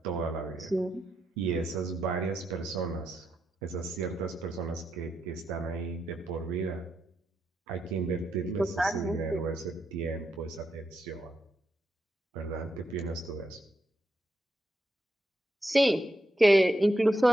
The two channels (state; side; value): normal; both; correlation 0.83